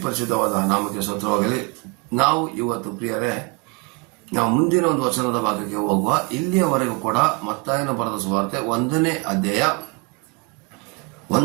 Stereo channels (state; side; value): quieter; left; 29.7 dB